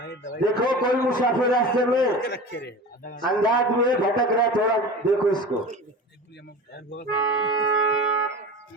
देखो, कोई मुसाफिर रास्ते में अंदाज में भटक रहा, थोड़ा देखो इसको।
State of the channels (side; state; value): both; normal; correlation 0.33